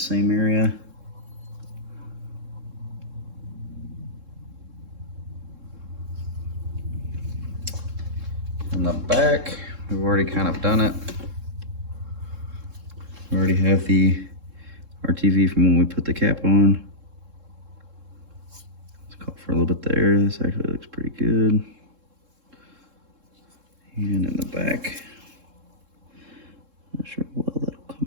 area. In the back, we've already kind of done it. We already have the RTV from when we put the cap on. Let's call for a little bit there. This actually looks pretty good. And in the back, not sure how well that'll come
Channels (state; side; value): late; left; 3.7 ms